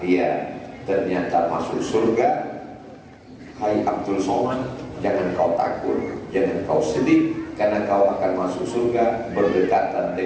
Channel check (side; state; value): both; identical; correlation 1.00